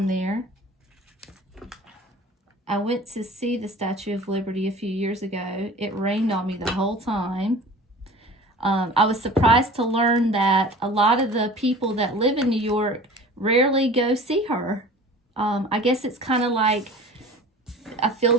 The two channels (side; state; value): both; normal; correlation 0.41